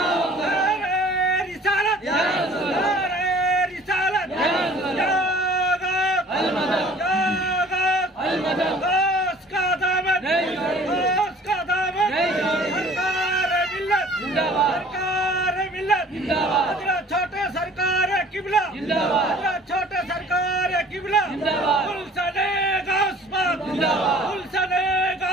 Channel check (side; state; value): both; normal; correlation 0.50